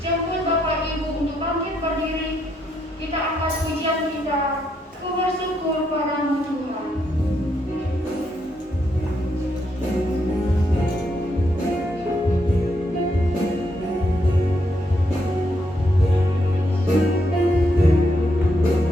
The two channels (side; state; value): both; normal; correlation 0.77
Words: Bapak Ibu untuk bangkit berdiri. Kita angkat pujian kita, ku bersyukur padamu Tuhan.